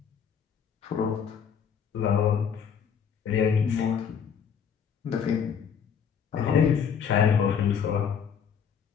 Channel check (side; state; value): right; quieter; 7.4 dB